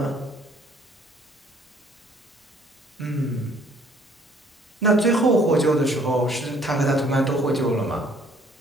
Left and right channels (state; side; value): normal; both; correlation 0.59